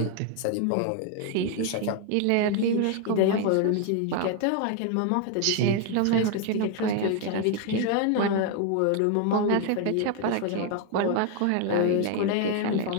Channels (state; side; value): different; both; correlation 0.01